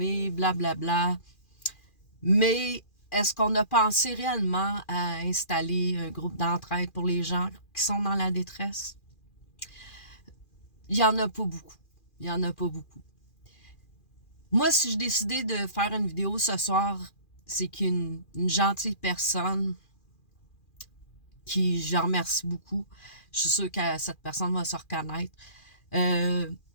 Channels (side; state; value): right; late; 2.4 ms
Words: blablabla. Mais est-ce qu'on a pensé réellement à installer un groupe d'entraide pour les gens qui sont dans la détresse? Il y en a pas beaucoup. Il y en a pas beaucoup. Moi, si je décidais de faire une vidéo ce soir, c'est qu'une gentille personne qui, je remercie beaucoup, je suis sûre que cette personne va se reconnaître, de